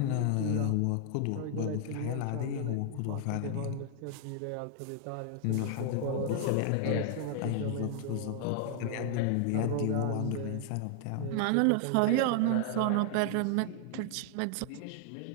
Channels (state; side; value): different; both; correlation 0.00